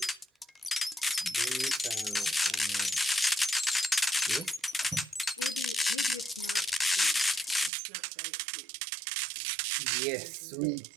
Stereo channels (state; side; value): drops out; left; at 7.7 s